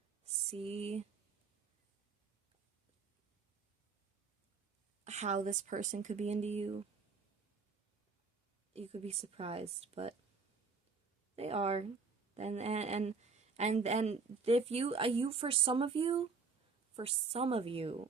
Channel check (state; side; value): quieter; left; 4.7 dB